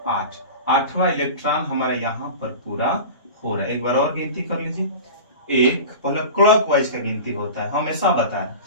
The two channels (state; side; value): inverted; both; correlation -0.33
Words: 8, 8वां इलेक्ट्रॉन हमारा यहां पर पूरा हो रहा है। एक बार और गिनती कर लीजिए, एक पहले क्लॉकवाइज का गिनती होता है, हमेशा बताएं,